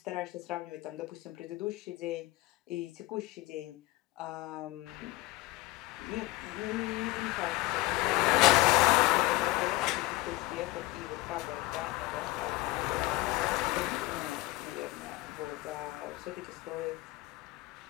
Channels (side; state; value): right; quieter; 19.0 dB